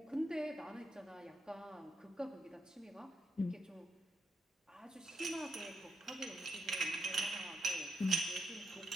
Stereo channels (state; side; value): normal; both; correlation 0.81